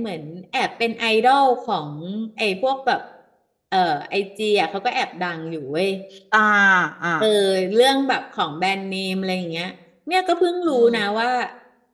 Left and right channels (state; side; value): identical; both; correlation 1.00